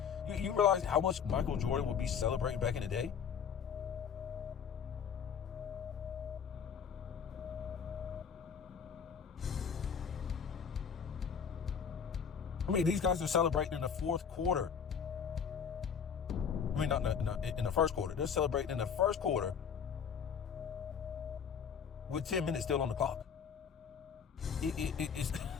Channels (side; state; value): right; quieter; 7.1 dB